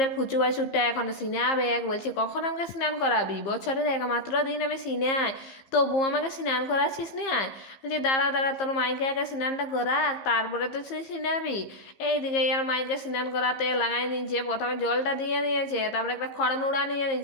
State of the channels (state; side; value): late; right; 15 ms